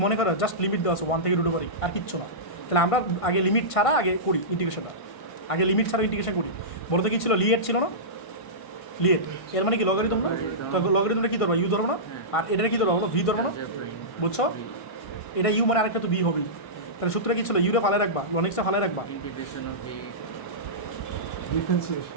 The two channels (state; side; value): late; right; 1.5 ms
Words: মনে করো জাস্ট লিমিট দেওয়া আছে 1 থেকে রুট ওভার, আর কিচ্ছু না, তাহলে আমরা আগে লিমিট ছাড়া আগে করি ইন্টিগ্রেশনটা, আগে লিমিট ছাড়া ইন্টিগ্রেশন করি, বলতে কি ছিল লিয়েট ছিল না, লিয়েট এর মানে কি লগারিদম না, তো লগারিদমটা কী ধরবো ইউ ধরবো না, আর এটা কী ধরবো ভি ধরবো না, বুঝছো? এটা ইউ মানে আরেকটা তো বি হবেই। তাহলে সূত্রে কি ছিল? ইউরে ফালে রাখবা, লন এক্সটা ফালে রাখবা, integration of v